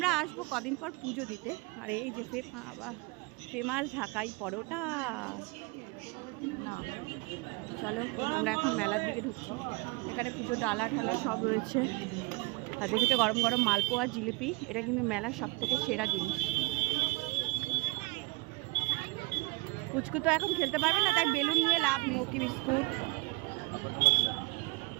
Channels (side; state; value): left; quieter; 25.9 dB